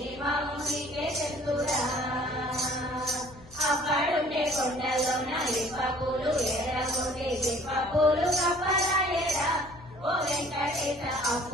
మామునికే తెలుసురా. అప్పుడుండే కొండలోన ఇప్ప పూలు ఏరబోతే ఇప్ప పూలు కప్పలాయేరా ఓ వెంకటేశ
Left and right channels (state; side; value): noise; left; hum, 22 dB below the sound